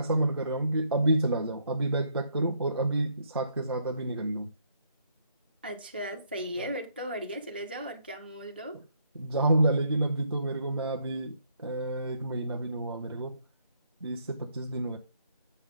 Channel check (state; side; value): inverted; both; correlation -0.71